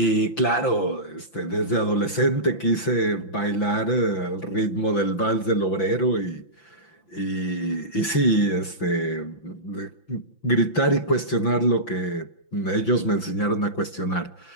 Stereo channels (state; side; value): late; right; 5.9 ms